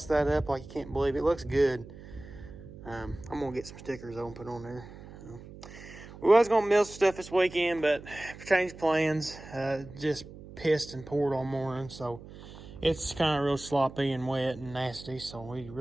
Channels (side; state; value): right; noise; hum, 16 dB below the sound